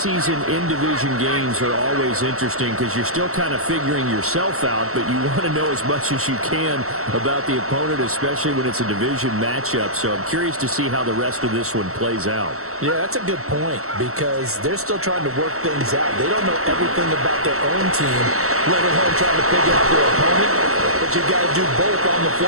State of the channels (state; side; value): late; left; 0.63 ms